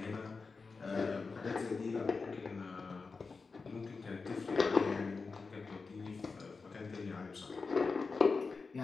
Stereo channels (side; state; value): right; quieter; 4.4 dB